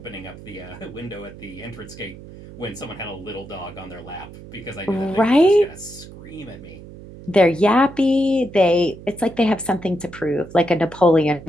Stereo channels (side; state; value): right; noise; hum, 16 dB below the sound